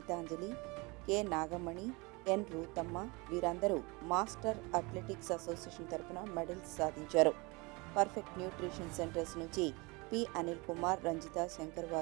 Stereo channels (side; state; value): left; quieter; 26.5 dB